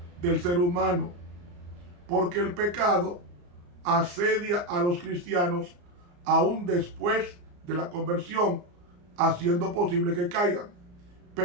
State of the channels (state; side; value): late; left; 34 ms